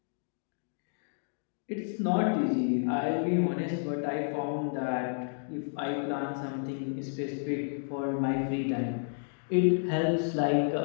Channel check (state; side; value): silent; right; digital silence